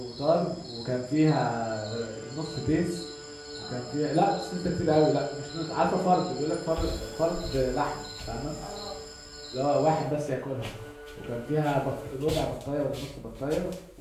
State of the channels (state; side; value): identical; both; correlation 1.00